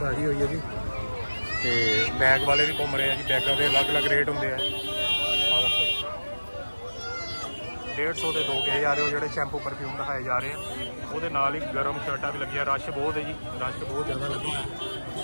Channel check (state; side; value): inverted; both; correlation -1.00